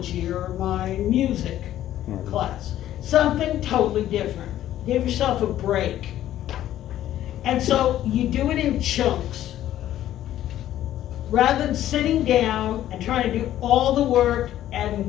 or my music Right. class. Something totally different. Give yourself a break. And so you do it in chunks. Rather than sitting down and trying to do all the work at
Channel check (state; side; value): quieter; right; 12.6 dB